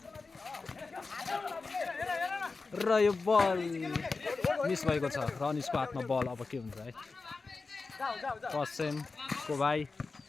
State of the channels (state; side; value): quieter; right; 4.1 dB